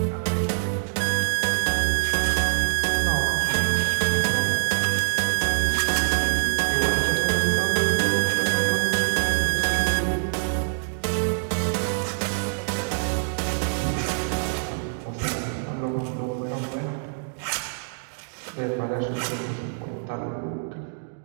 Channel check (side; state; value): left; silent; digital silence